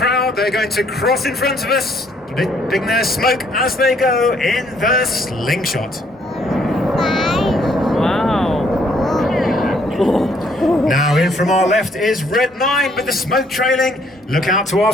they're going to cross in front of us, letting their smoke as they go in the slingshot. Wow. Now in from our left is Red 9 with the smoke trailing. Look out to our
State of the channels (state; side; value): normal; both; correlation 0.66